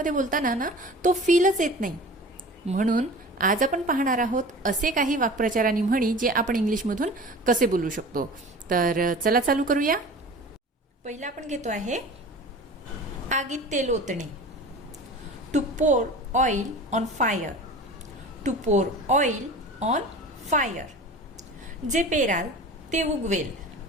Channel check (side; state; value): both; normal; correlation 0.38